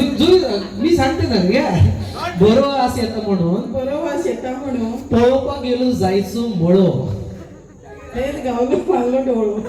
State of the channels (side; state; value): both; identical; correlation 1.00